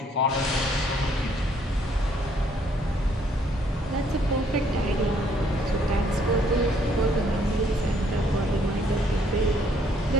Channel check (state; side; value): normal; both; correlation 0.66